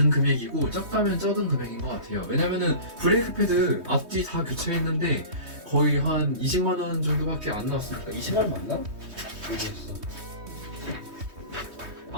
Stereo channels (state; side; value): late; left; 3.2 ms